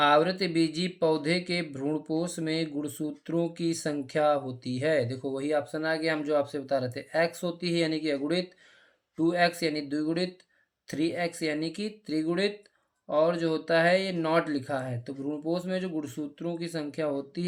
बीजी पौधे के भ्रूणपोष में गुणसूत्रों की संख्या होती है। देखो वही ऑप्शन आ गया, हम जो आपसे बता रहे थे। x होती है यानी कि अगुणित, 2x यानी द्विगुणित, 3x यानी कि त्रिगुणित, और जो होता है ये नॉट लिखा है। तो भ्रूणपोष में जो गुणसूत्रों की संख्या होती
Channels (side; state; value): both; identical; correlation 1.00